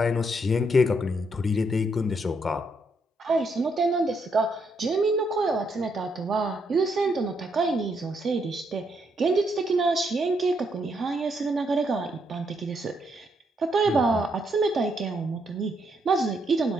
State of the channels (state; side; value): normal; both; correlation 0.76